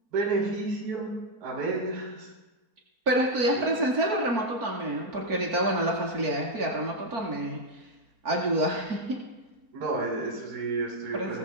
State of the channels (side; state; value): left; late; 4.5 ms